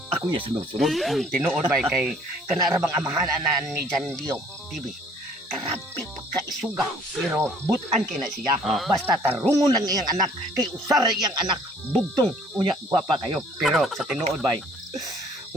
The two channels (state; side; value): normal; both; correlation 0.57